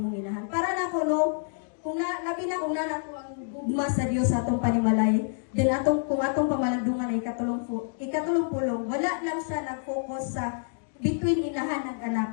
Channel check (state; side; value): silent; right; digital silence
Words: inahan. Para na ko no, kung labi na kung nato ang gugma sa Dios sa atong panimalay, then kung atong pamalandungan ay ikatulong pulong, wala lang siya nag-focus sa between inahan at anak.